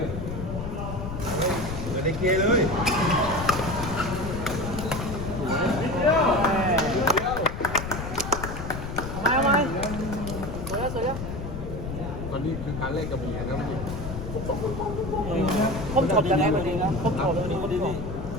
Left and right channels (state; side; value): noise; left; rumble, 7 dB below the sound